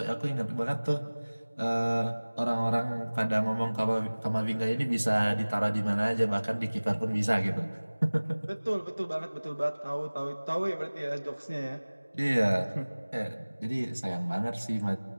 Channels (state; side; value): inverted; both; correlation -1.00